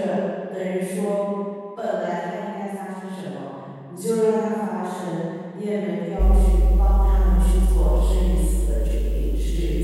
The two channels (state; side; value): identical; both; correlation 1.00